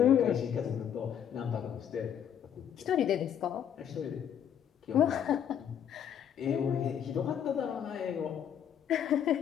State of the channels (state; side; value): quieter; right; 9.1 dB